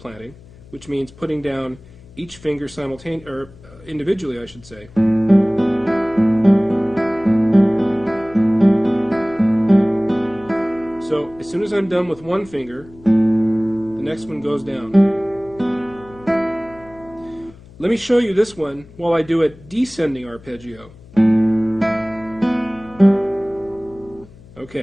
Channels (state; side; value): noise; left; hum, 23 dB below the sound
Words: which means putting down each finger simultaneously, or individually, I should say. So as soon as I'm done with one finger, the next one goes down. Let me show you this one while I do a descending arpeggio.